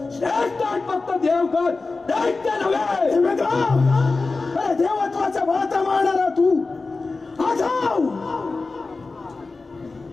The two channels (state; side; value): quieter; right; 3.8 dB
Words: श्रेष्ठ फक्त देवगण, दैत्य नव्हे. अरे देवत्वाचा भाता मारणारा तू आठव